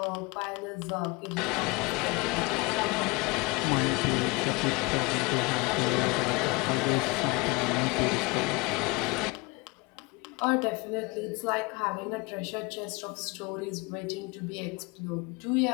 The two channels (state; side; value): quieter; right; 26.1 dB